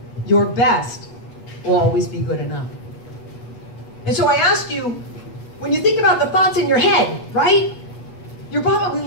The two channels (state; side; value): late; right; 8.4 ms